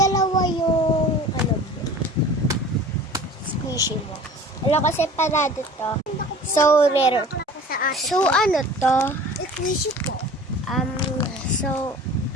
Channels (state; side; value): normal; both; correlation 0.43